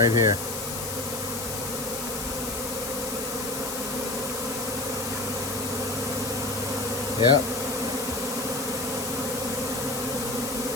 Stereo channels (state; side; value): noise; left; hiss, 5 dB below the sound